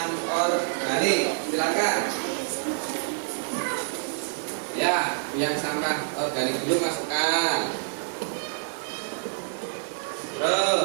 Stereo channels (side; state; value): left; silent; digital silence